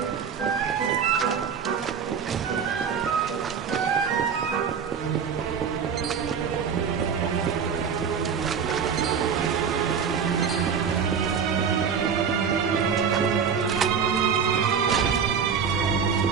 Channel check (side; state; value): left; quieter; 6.8 dB